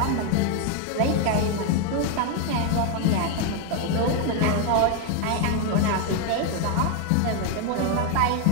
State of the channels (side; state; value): both; different; correlation 0.01